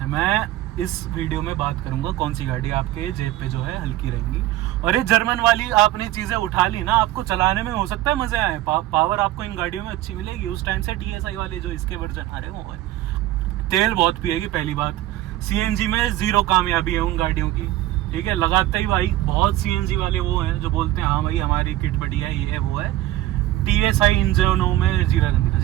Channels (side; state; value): left; quieter; 15.1 dB